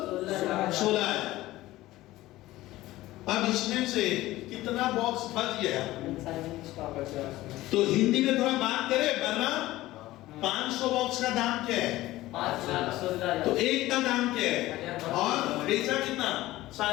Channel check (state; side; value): quieter; right; 16.9 dB